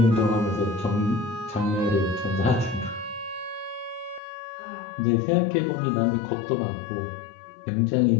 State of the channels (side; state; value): right; drops out; at 4.2 s